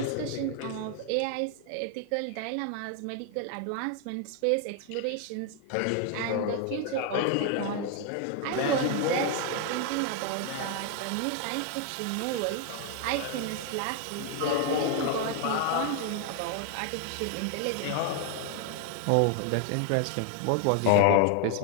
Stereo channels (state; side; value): different; both; correlation 0.00